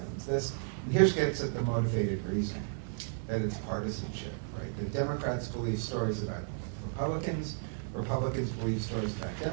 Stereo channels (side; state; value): left; silent; 56 dB below the other